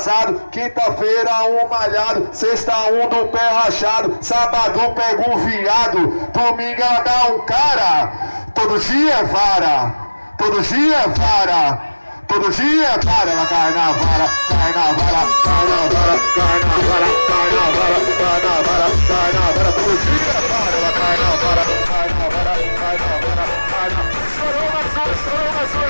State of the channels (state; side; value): inverted; both; correlation -1.00